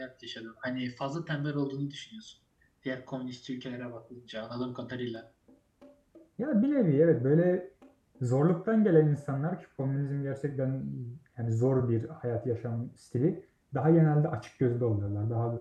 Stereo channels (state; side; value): identical; both; correlation 1.00